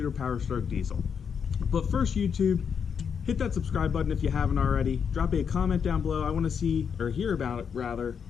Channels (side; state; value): right; quieter; 6.9 dB